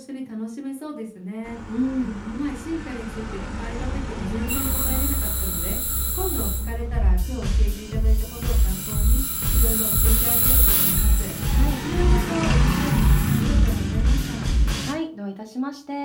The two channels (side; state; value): both; identical; correlation 1.00